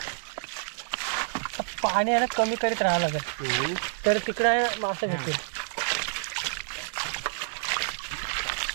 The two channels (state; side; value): silent; left; digital silence